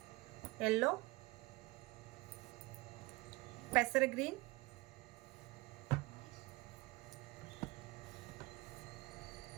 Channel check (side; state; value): left; quieter; 22.6 dB